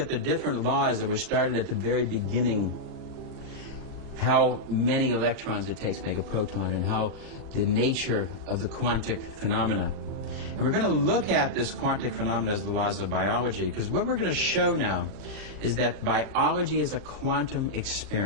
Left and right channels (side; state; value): left; late; 39 ms